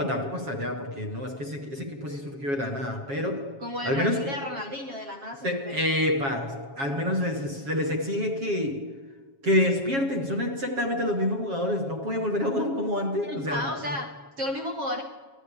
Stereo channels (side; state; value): left; late; 7.3 ms